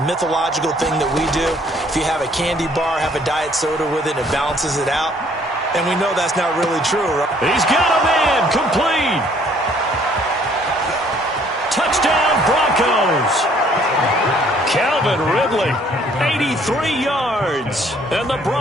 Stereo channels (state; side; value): normal; both; correlation 0.61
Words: mythological thing that we do? If you have a candy bar, have a diet soda with it, it balances it out. And we know that's not really true, right? He's got a man, complete. Touchdown, Broncos. Calvin Ridley, 83 yards. And the